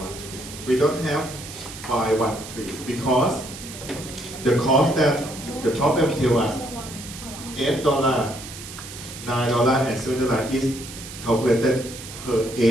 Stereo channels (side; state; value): right; noise; hiss, 13 dB below the sound